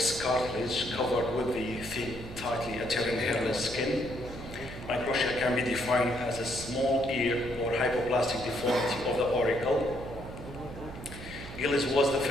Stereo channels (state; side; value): noise; right; hum, 13 dB below the sound